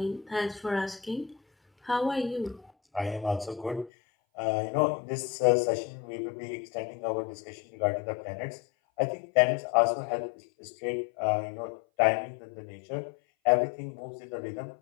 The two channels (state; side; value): drops out; right; at 3.9 s